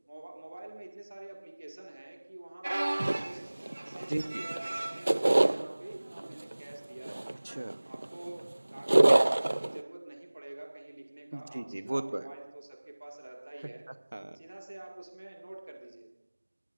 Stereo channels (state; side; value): inverted; both; correlation -1.00